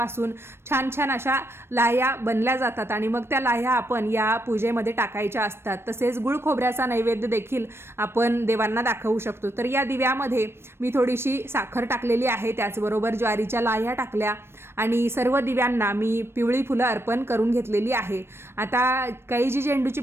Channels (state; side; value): late; left; 0.12 ms